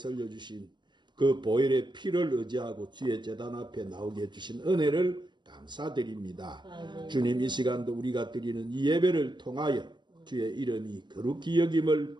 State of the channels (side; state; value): left; late; 0.22 ms